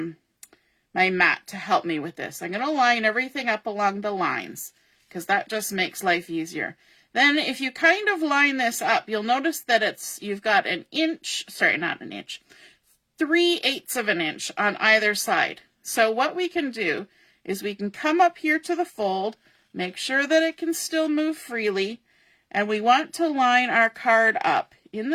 my mat to help me with this. I'm going to line everything up along the lines, because that just makes life easier. Then if you kind of line this up, you'll notice that you've got an inch, sorry, not an inch, 3/8 of an inch on either side. So what we can do is we can come up here to the fold, make sure that it can still move freely, and we want to line our card up in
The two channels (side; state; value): both; identical; correlation 1.00